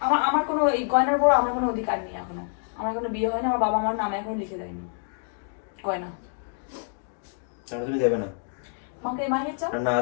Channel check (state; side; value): silent; right; 60 dB below the other